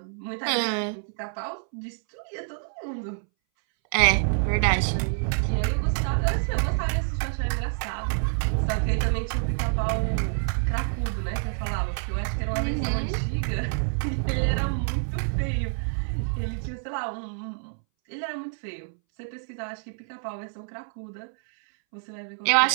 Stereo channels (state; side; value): silent; left; 60 dB below the other